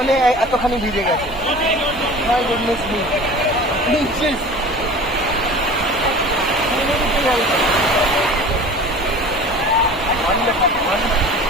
এতখানি ভিজে গেছে। My goodness me.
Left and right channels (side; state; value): both; normal; correlation 0.40